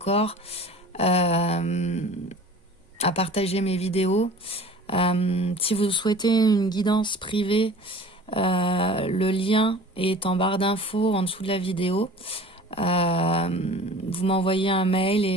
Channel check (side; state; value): both; normal; correlation 0.43